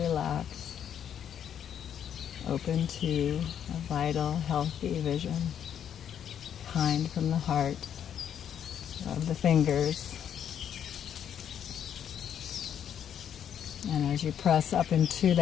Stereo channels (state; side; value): quieter; right; 9.1 dB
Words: Open to a vital, healthy vision. Kind from the heart. Rub the fingers. And as you press up into